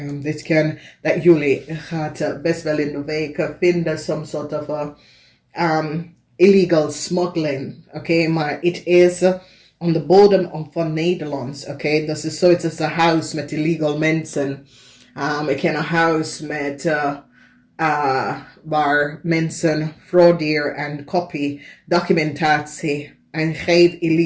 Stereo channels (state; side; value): identical; both; correlation 1.00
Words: Dit kan dat jullie gaat best wel in de week vinden some sort of illegal smuggling. Oké, maar het is on de bodem van Nederlands. Oké, dat is zoiets als een huis met illegal mensen. Ik ken een huis met waar mensen frauderen en copy documentatie en geef